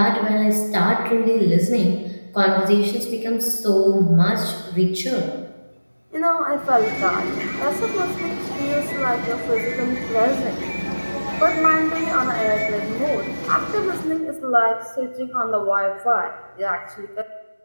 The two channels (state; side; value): inverted; both; correlation -1.00